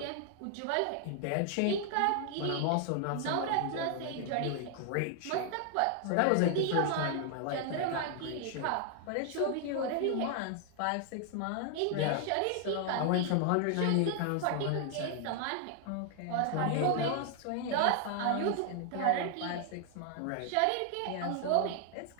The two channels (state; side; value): different; both; correlation 0.00